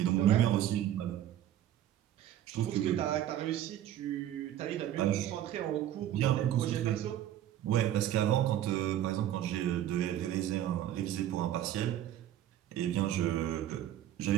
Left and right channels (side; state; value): left; quieter; 11.8 dB